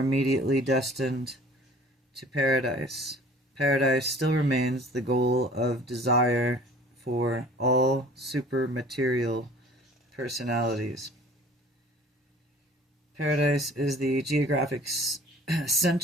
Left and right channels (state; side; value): normal; both; correlation 0.48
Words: destined to paradise, paradise still remains the goal of desire for all supermaterial personalities. Paradise is the geographic